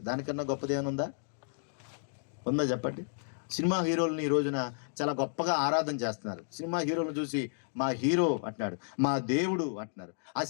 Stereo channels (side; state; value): right; silent; digital silence